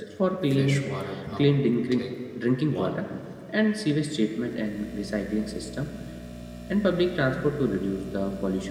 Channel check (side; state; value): both; identical; correlation 1.00